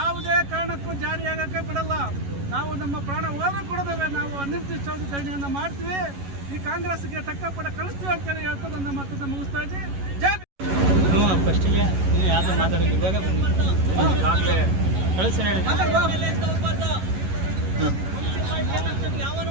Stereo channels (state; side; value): late; left; 11 ms